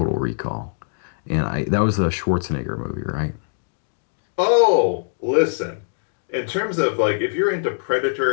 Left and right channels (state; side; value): silent; right; digital silence